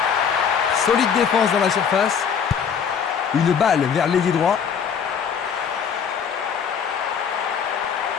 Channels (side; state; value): right; quieter; 7.1 dB